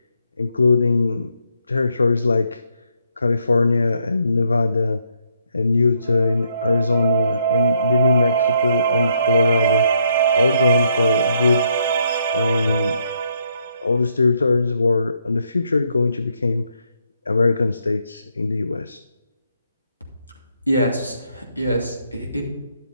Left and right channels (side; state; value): both; inverted; correlation -0.74